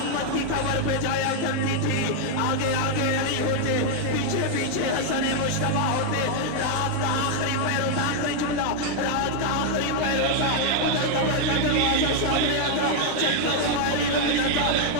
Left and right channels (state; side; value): different; both; correlation 0.00